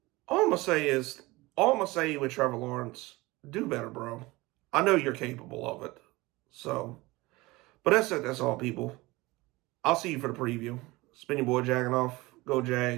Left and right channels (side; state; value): left; quieter; 21.4 dB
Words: all I'm gonna say with Trevor Lawrence, do better, bro. I know you're capable of it. So, but that's it. That's all, people. I'll see you for the preview. Spin your boy Jagging off. Go